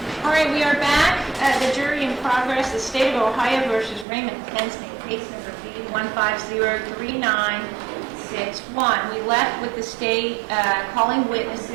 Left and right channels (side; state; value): left; drops out; at 4.0 s